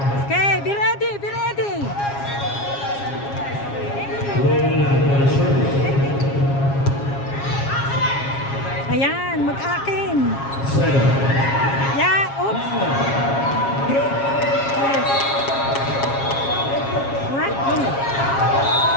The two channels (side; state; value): right; late; 7.3 ms